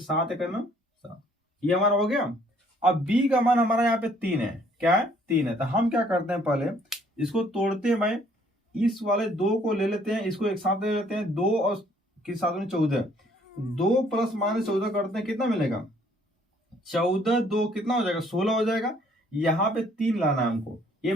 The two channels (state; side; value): normal; both; correlation 0.62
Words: × 7, ये हमारा हो गया। अब b का मान हमारा यहाँ पे 3 है, क्या है, 3 है। तो हम क्या करते हैं, पहले इसको तोड़ते हैं भाई, इस वाले 2 को ले लेते हैं, इसको एक साथ ले लेते हैं, 2 और के साथ में 14, 2 + -14 करते हैं, कितना मिलेगा, 14 2 कितना हो जाएगा, 16 हो जाएगा। यहाँ पे 3 लाना है हमको, ये